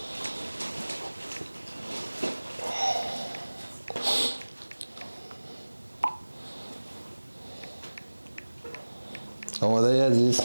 آماده ای عزیز؟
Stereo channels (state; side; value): inverted; both; correlation -1.00